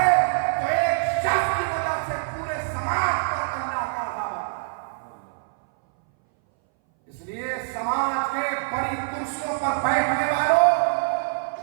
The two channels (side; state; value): left; silent; 60 dB below the other